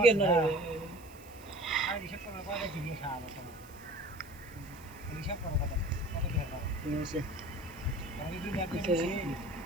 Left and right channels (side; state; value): right; noise; hiss, 23 dB below the sound